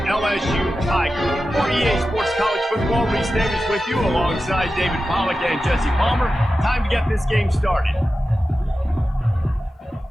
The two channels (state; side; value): normal; both; correlation 0.93